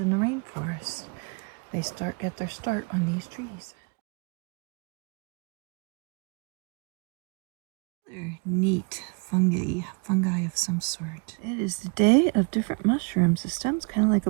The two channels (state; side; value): quieter; left; 34.0 dB